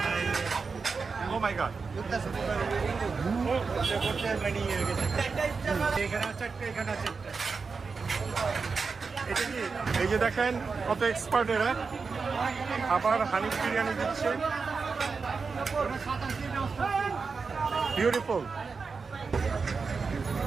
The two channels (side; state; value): left; quieter; 4.8 dB